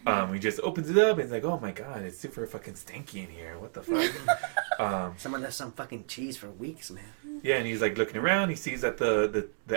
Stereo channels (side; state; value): left; silent; digital silence